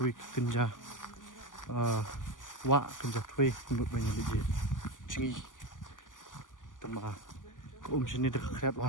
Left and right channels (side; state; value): right; late; 0.88 ms